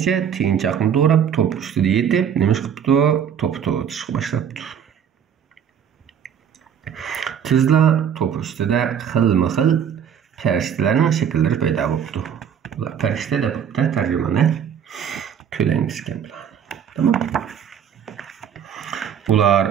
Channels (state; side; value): quieter; left; 8.3 dB